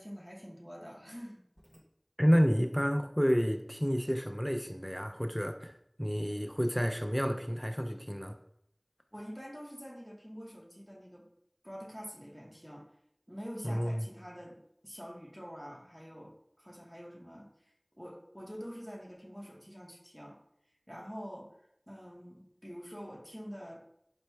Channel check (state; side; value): identical; both; correlation 1.00